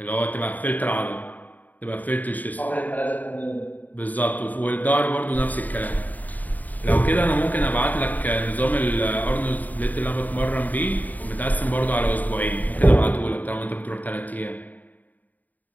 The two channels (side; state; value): right; late; 0.081 ms